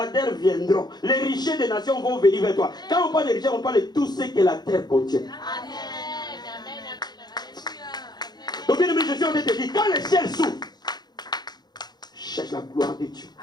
viendront. Les richesses des nations vont venir vers toi. Quand on parle de richesses, on parle de tout ce que la terre contient. Donc bien aimé, je suis en train de te dire, quand le ciel s'ouvre, cherche la gloire de Dieu.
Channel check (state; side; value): late; right; 0.20 ms